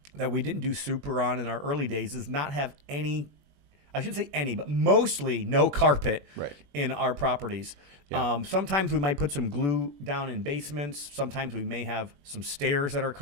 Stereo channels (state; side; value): late; left; 21 ms